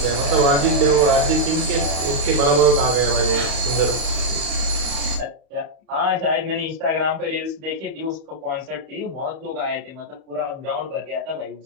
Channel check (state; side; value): late; left; 31 ms